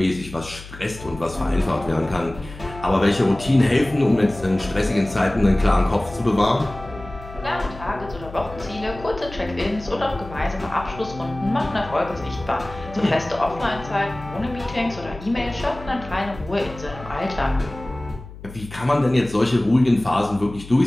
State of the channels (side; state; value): left; noise; hum, 15 dB below the sound